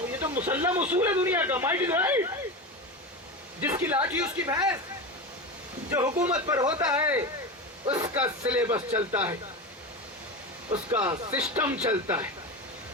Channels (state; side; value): normal; both; correlation 0.22